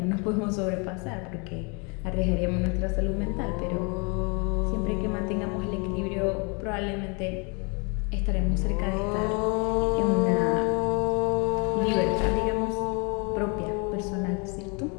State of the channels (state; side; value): quieter; right; 32.8 dB